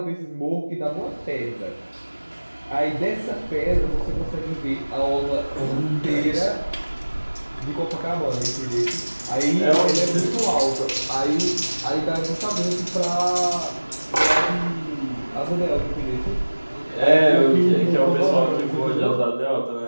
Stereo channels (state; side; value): inverted; both; correlation -1.00